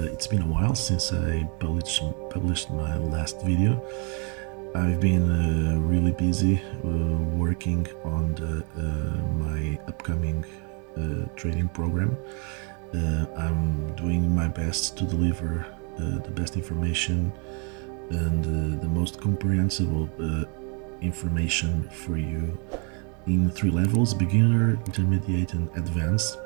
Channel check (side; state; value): left; quieter; 35.7 dB